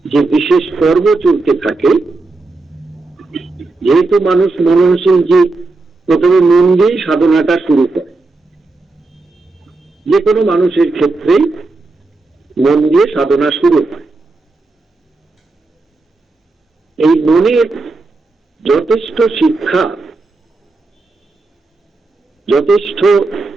যে বিশেষ পর্ব চলতে থাকে। যেহেতু মানুষ মননশীল জীব, প্রথমে মন দিয়েই সাধনাটা শুরু করে। যে কোনো মানুষের ক্ষেত্রেই মন দিয়ে সাধনা শুরু হয়। এই মনের যথেষ্ট শিক্ষা, যথেষ্ট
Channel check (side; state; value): left; quieter; 3.4 dB